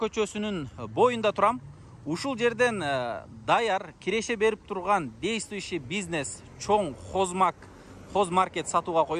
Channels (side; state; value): both; identical; correlation 1.00